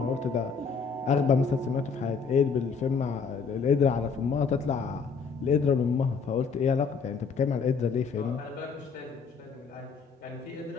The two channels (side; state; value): right; quieter; 5.5 dB